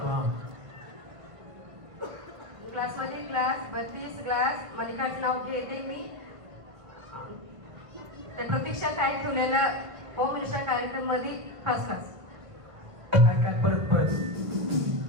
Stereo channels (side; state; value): left; late; 1.5 ms